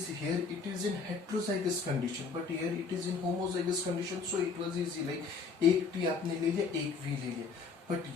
here, it is in heterozygous condition, but here it is in homozygous condition. So it was easy, like एक T आपने ले लिया, एक V ले लिया. But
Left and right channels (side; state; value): right; quieter; 5.0 dB